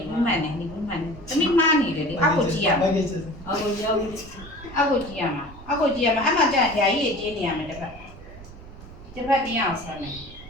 တမိမားနေတယ်လေအောက်ကိုကြည့်ရမှာအောက်ကိုကြည့်ရမှာအဲ့မှာကြာဓာကြီးကြီးနေရမယ်တစ်ဖက်တင်းအောင်ဆက်မယ်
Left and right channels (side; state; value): right; noise; rumble, 17 dB below the sound